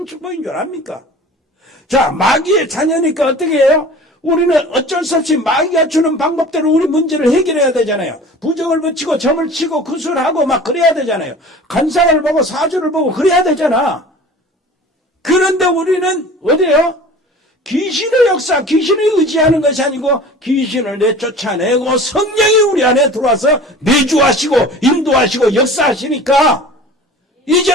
축복인 줄 압니까? 자, 마귀의 자녀니까 어떻게 해요? 우리는 어쩔 수 없이 마귀가 주는 방법대로 우리 문제를 해결해야 되잖아요. 부정을 붙이고 점을 치고 구술하고 막 그래야 되잖아요. 간상을 보고 사주를 보고 그래야 되잖아. 그런데 우리는 어디에요? 귀신의 역사, 귀신을 의지하는 것이 아니고 귀신을 내쫓아내고 성령이 우리 안에 들어와서 내주하시고 인도하시고 역사하시니까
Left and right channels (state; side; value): normal; both; correlation 0.41